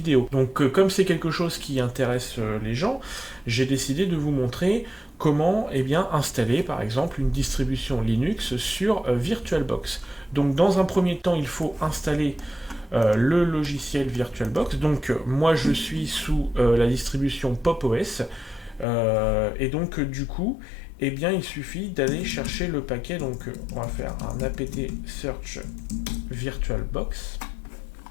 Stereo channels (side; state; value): right; drops out; at 18.9 s